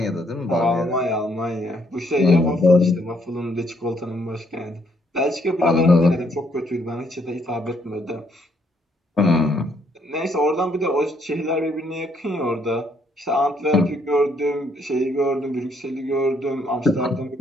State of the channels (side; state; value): both; normal; correlation 0.70